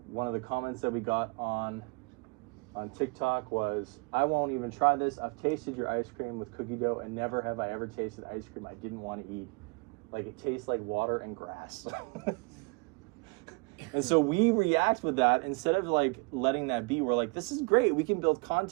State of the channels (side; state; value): left; quieter; 30.1 dB